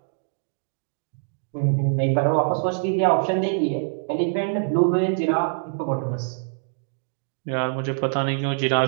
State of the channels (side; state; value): left; silent; digital silence